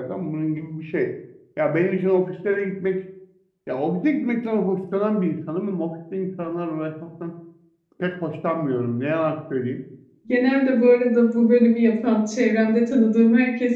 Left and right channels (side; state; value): both; identical; correlation 1.00